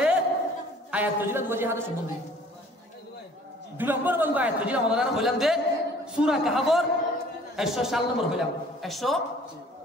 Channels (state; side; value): normal; both; correlation 0.53